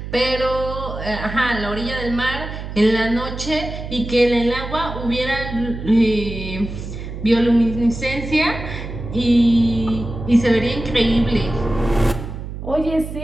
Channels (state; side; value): noise; right; hum, 9 dB below the sound